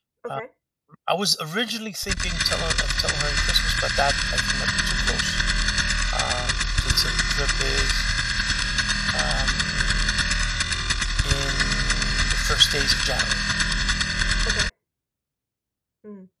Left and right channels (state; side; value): identical; both; correlation 1.00